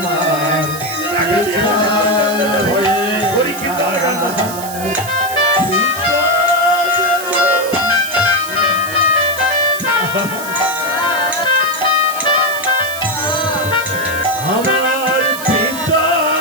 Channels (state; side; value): noise; right; hiss, 11 dB below the sound